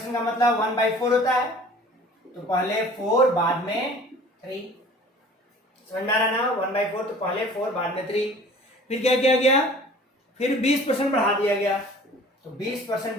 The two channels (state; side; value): normal; both; correlation 0.47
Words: का मतलब 1/4 होता है, तो पहले 4 बाद में 3। समझ में आ रहा ना? 1/4 तो पहले 4 बाद में 3। फिर क्या किया गया? फिर 20% बढ़ा दिया गया, तो 20%